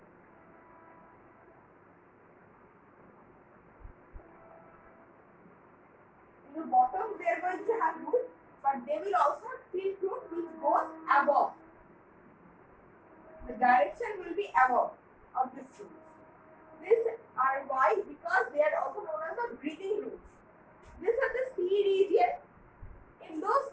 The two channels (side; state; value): both; identical; correlation 1.00